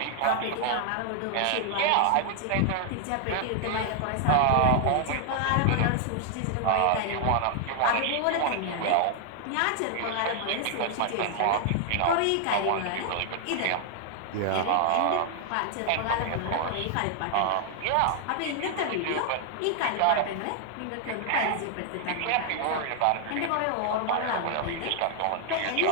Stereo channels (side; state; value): both; different; correlation 0.00